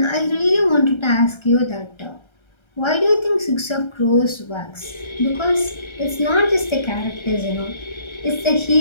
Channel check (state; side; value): late; right; 1.3 ms